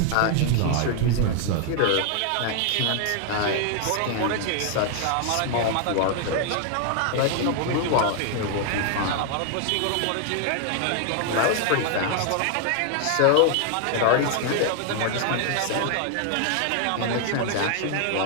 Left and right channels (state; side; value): different; both; correlation 0.00